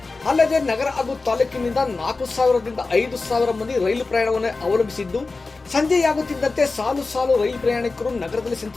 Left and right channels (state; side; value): quieter; right; 3.8 dB